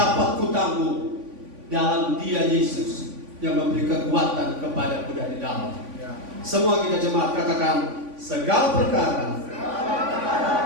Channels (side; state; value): left; late; 3.5 ms